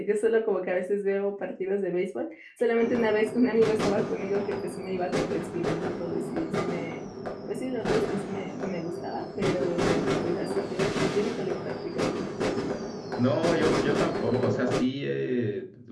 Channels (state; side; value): identical; both; correlation 1.00